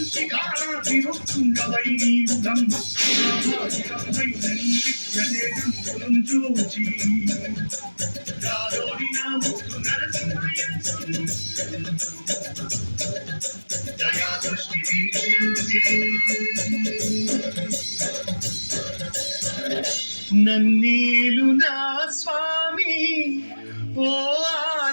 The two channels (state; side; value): inverted; both; correlation -1.00